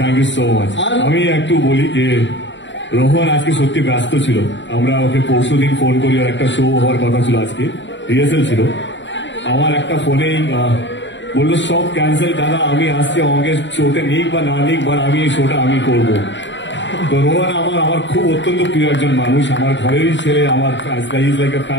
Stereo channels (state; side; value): late; right; 0.53 ms